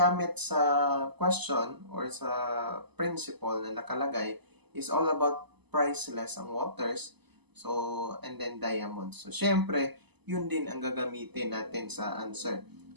sa question or sa principle na nakalagay is all about priceless ang waters, so, and then diamonds. So, syempre, yun din ang gagamitin natin sa answer.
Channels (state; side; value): late; left; 0.99 ms